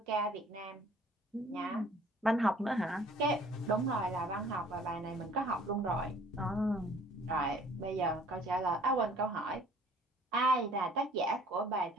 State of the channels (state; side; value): normal; both; correlation 0.55